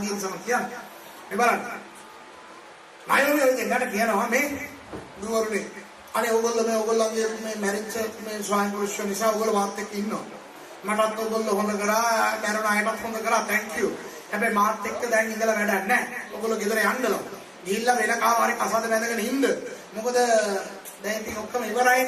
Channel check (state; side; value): identical; both; correlation 1.00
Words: ගිහින් සම කියන්න. මේ බලන්න. අයෝමි ඉතින් ගන්න කියනවා මේ දුවරුනේ. අනේ ඔයගොල්ලන්ගේ මේ මැරිච්ච මේ ස්වාමි පුරුෂයෝ නිසා ඔයගොල්ලෝ මාත් එක්ක ඉන්නවා. මටත් ඔයගොල්ලෝ හොඳ කරා, මරණ අයටත් හොඳ කරා. thank you. හැබැයි මාත් එක්ක දැන් ඉඳලා වැඩක් නැහැ. ඔයගොල්ලෝ ගෙදර යන්නලු. ගිහිල්ලා වෙන කාමාරේ කසාද බැඳගෙන ඉන්න. මොකද දැන් ඉතින් ඔක්කොම